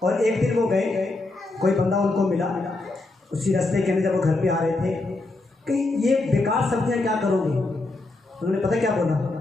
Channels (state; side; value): quieter; right; 3.1 dB